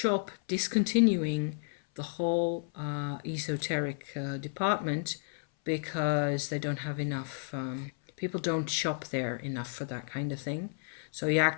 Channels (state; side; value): silent; right; 56 dB below the other